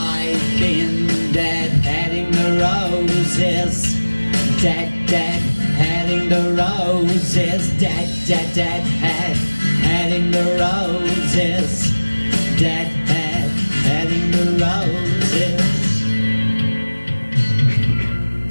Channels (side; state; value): both; inverted; correlation -1.00